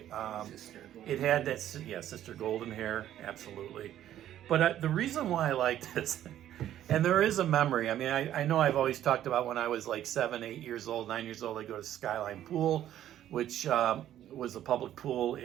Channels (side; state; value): left; quieter; 11.8 dB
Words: It had that, Sister Golden Hair, absolutely. But the reason why I like this, and there is a memory. I mean, I know I've always talked about when I was like 7, 8 years old, 9 years old, I go to Skyline Pool, which was a public pool